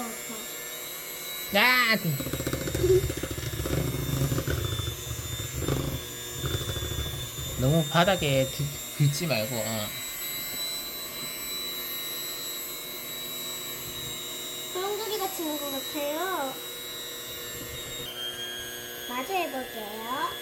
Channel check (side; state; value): both; identical; correlation 1.00